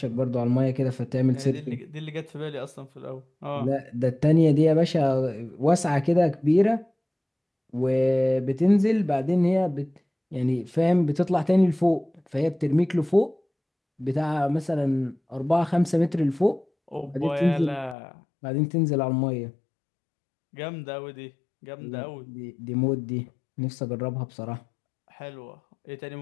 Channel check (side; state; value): right; drops out; at 17.9 s